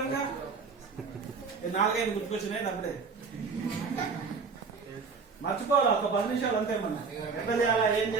గా 4-5 గుర్తుకొచ్చినాయి. అప్పుడే మర్చిపోవాలి, ఒక 10 నిమిషాలు అంతే. మనం ఎట్లా చేయాలా, ఏం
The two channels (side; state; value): left; quieter; 5.0 dB